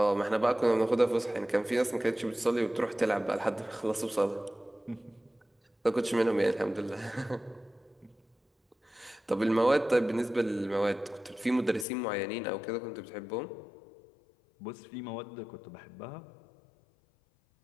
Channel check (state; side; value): drops out; right; at 11.9 s